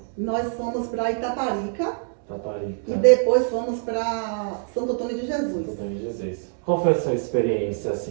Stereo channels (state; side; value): silent; left; digital silence